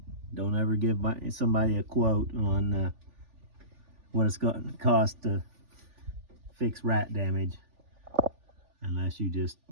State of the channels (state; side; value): late; left; 3.4 ms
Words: don't ever give somebody a quote on what it's going to cost to fix rat damage, unless you just